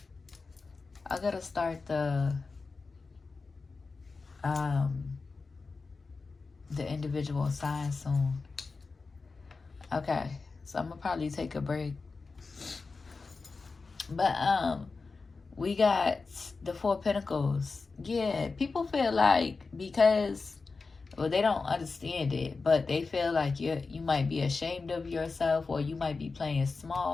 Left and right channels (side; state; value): right; quieter; 4.2 dB